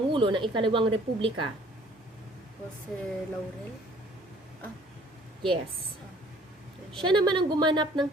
ng ikalawang Republika. Jose Laurel. Yes. Siya naman ang gumanap ng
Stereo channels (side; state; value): both; normal; correlation 0.57